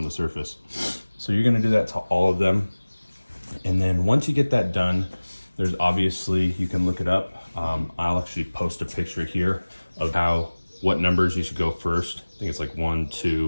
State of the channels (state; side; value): inverted; both; correlation -1.00